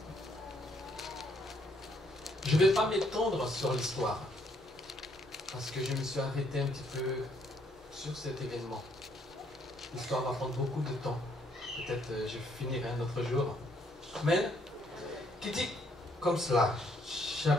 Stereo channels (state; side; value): normal; both; correlation 0.69